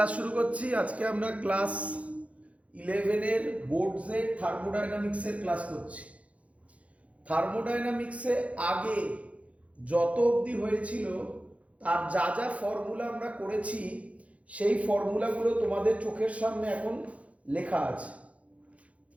শুরু করছি। আজকে আমরা ক্লাস 11-এর বোর্ডসের থার্মোডাইনামিক্সের ক্লাস করছি। থার্মোডাইনামিক্সে আগে যত অবধি হয়েছিল তার যা যা ফর্মুলা আমরা করেছি সেই ফর্মুলাগুলো তোমাদের চোখের সামনে এখন লেখা আছে।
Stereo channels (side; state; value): left; late; 0.065 ms